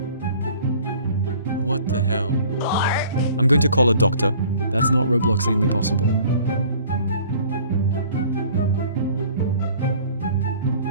What the hell? I'm going to call a doctor. That's not Robloxanely possible.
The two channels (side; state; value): both; inverted; correlation -0.51